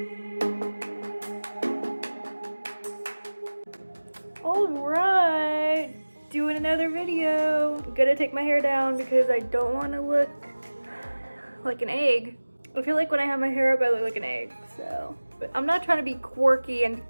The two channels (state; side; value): inverted; both; correlation -1.00